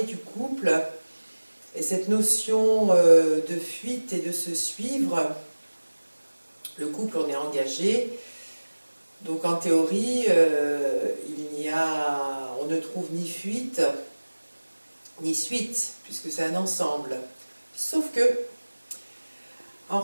du couple et cette notion de fuite et de se suivre. Le couple, on est engagé, donc en théorie, on ne trouve ni fuite ni suite, puisque c'est un ensemble. Sauf que, en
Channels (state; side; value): inverted; both; correlation -1.00